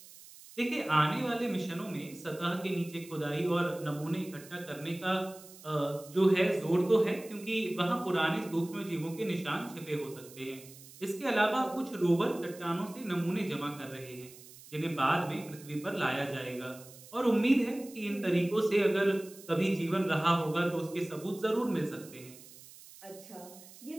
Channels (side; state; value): right; noise; hiss, 19 dB below the sound